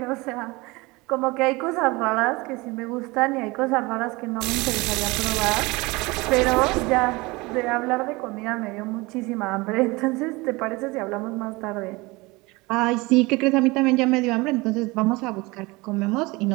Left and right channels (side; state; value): left; quieter; 23.5 dB